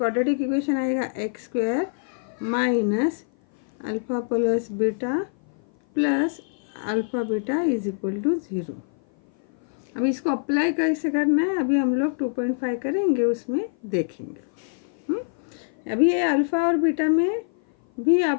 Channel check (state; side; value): silent; right; 56 dB below the other